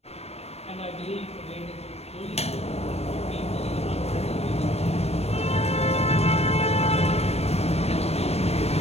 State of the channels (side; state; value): right; late; 0.30 ms